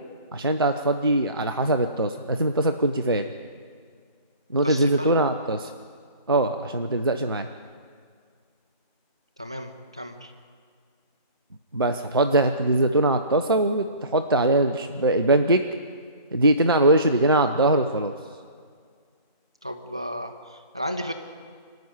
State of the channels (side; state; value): both; inverted; correlation -0.44